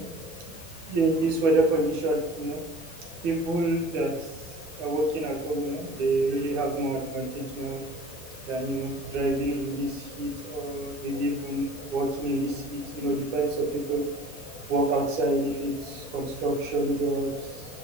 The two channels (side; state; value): both; normal; correlation 0.45